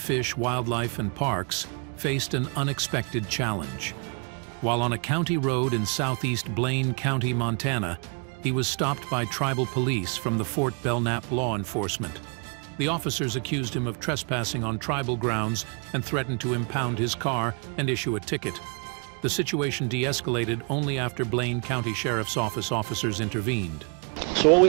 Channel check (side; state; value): left; quieter; 37.5 dB